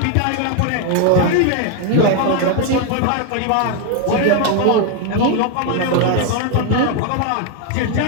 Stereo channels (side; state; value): both; different; correlation 0.01